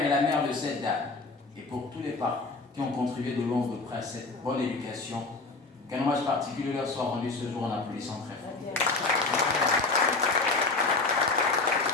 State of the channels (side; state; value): right; quieter; 3.7 dB